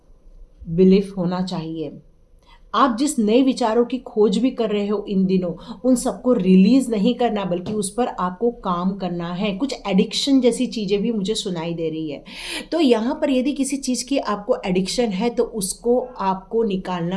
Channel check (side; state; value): both; identical; correlation 1.00